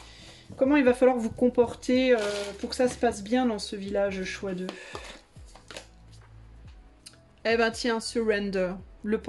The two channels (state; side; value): identical; both; correlation 1.00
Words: Comment il va falloir vous comporter pour que ça se passe bien dans ce village, choix 2. Eh ben tiens, surrender, le